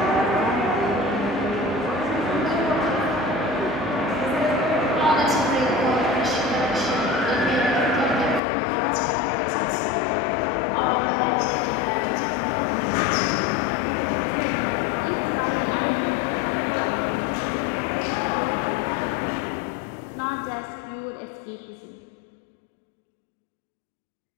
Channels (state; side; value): drops out; right; at 8.4 s